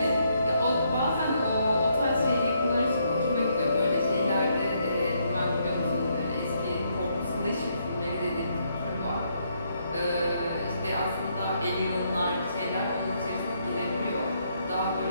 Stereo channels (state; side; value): inverted; both; correlation -0.74